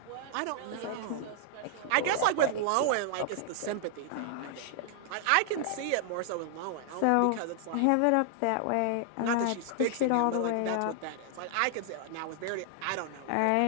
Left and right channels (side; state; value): both; different; correlation 0.00